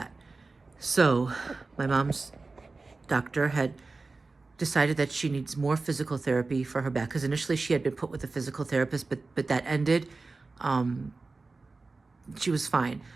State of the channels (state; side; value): quieter; left; 3.7 dB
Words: So, my mom's doctor had decided that she needs more physical therapy for her back, because initially she had been put with a physical therapist, but that ended. She was fine,